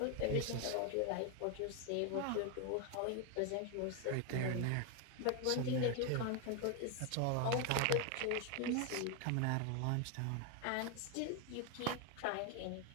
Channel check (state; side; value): different; both; correlation 0.01